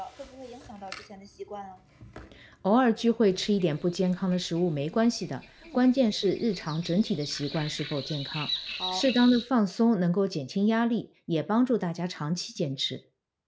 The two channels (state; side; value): identical; both; correlation 1.00